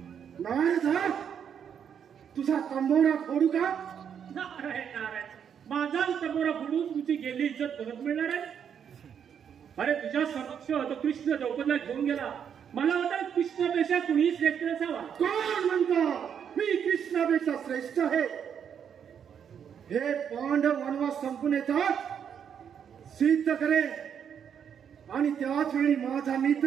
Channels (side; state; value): left; quieter; 8.0 dB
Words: नारायण, तुझा तंबोरा फोडू का? नारायण नारायण, माझा तंबोरा फोडून तुझी गेली इज्जत परत मिळणार आहे? अरे तुझ्या समक्ष तो कृष्ण द्रौपदीला घेऊन गेला. मला वाटतं कृष्णापेक्षा कुणी श्रेष्ठ असावा. कोण म्हणतो मी कृष्णापेक्षा श्रेष्ठ आहे? हे पांडव वनवास संपून येतात सिद्ध करे आणि त्याच वेळी माझा